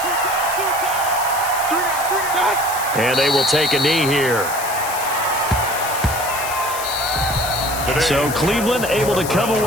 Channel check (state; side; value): noise; left; hiss, 8 dB below the sound